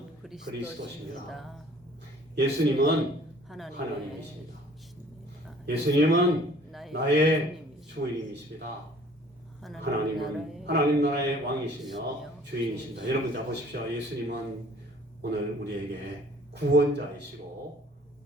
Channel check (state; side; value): normal; both; correlation 0.54